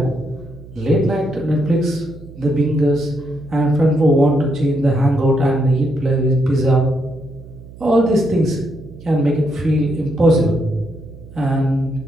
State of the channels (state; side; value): noise; right; hum, 18 dB below the sound